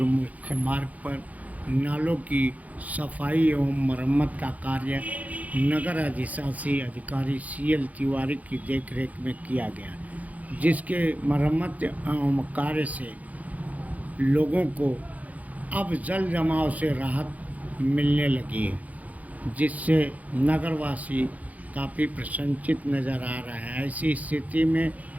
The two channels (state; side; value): late; left; 0.074 ms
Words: मुख्य मार्ग पर नालों की सफाई एवं मरम्मत का कार्य नगर अधिशासी अधिकारी CL तिवारी की देखरेख में किया गया, जिसके मरम्मत एवं कार्य से लोगों को अब जल जमाव से राहत मिलने लगी है, जिससे नगरवासी काफ़ी प्रसन्नचित्त नज़र आ रहा है। ऐसी स्थिति में